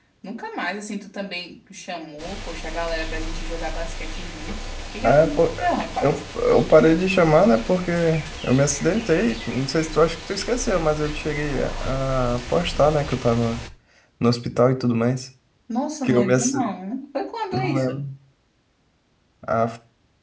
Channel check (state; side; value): identical; both; correlation 1.00